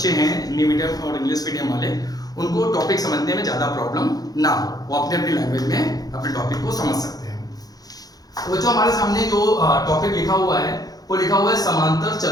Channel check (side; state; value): right; late; 0.18 ms